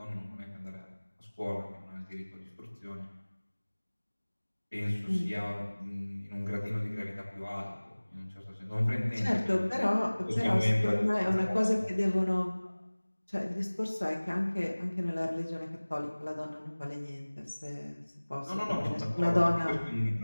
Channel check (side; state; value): both; inverted; correlation -1.00